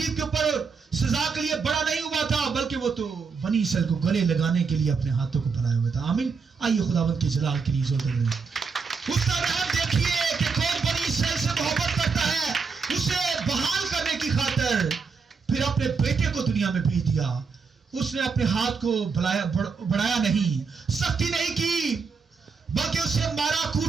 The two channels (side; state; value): left; quieter; 5.2 dB